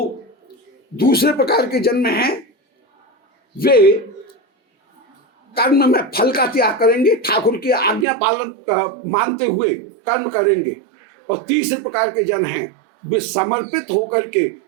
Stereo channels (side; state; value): left; drops out; at 8.1 s